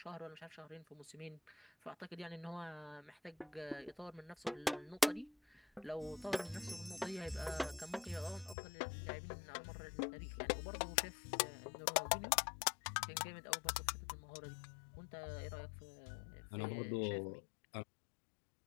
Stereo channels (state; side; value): drops out; right; at 8.6 s